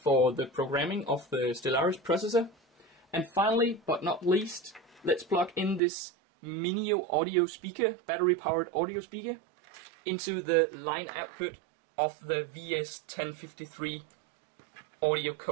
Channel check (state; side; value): drops out; left; at 5.8 s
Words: the programming of the Stellaris processor. And finally, but not least, let's plug in this Minio audio speaker, battery powered audio speaker, into the line output of the VS1053 Audio